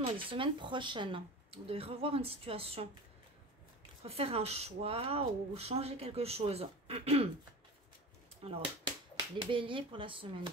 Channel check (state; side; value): normal; both; correlation 0.32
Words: dans les semaines prochaines. Vous devez revoir une situation, refaire un choix ou changer quelque chose. Alors, les béliers pour la semaine du